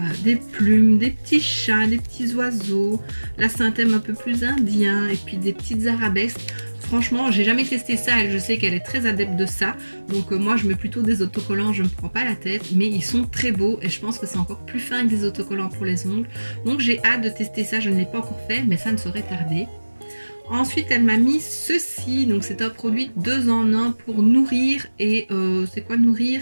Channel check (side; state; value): both; inverted; correlation -1.00